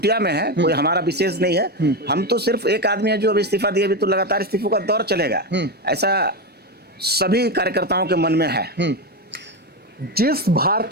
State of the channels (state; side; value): normal; both; correlation 0.13